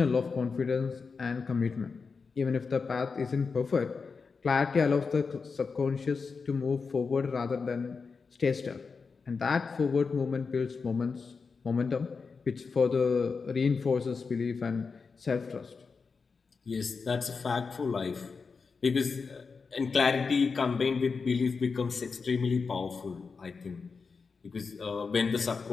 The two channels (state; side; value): quieter; right; 5.0 dB